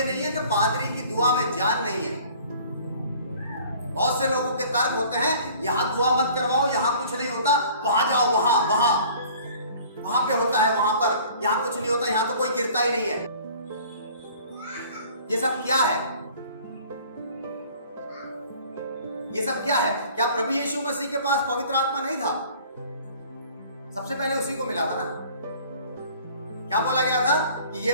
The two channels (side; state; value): both; inverted; correlation -0.50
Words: नहीं है कि पादरी की दुआ में जान नहीं है। बहुत से लोगों के तर्क होते हैं यहां दुआ मत करवाओ, यहां कुछ नहीं होता, वहां जाओ, वहां पे होता है, वहां पर, यहां कुछ नहीं होता, यहां तो कोई गिरता ही नहीं है। ये सब क्या है? ये सब क्या है? क्या प्रभु यीशु मसीह के पास पवित्र आत्मा नहीं था? सबसे पहले उसी को मिला था ना। क्या बोला गया था कि